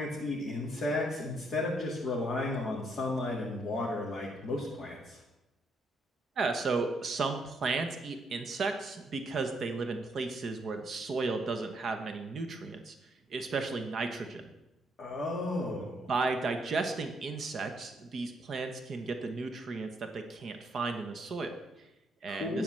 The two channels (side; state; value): both; normal; correlation 0.73